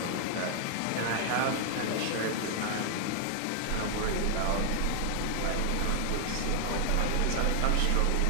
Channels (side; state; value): both; different; correlation 0.00